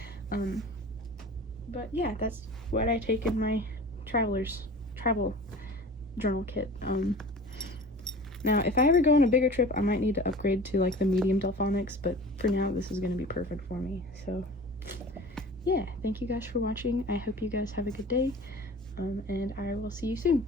But yeah, that's what I take in my travel journal kit. Now, if I ever go on a bigger trip, I might need to upgrade to like the medium Delphonics, but for now, this is going to be perfect for me. So yeah, thank you guys for watching. I hope you guys have a good day, and I will see you soon.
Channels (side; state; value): both; normal; correlation 0.40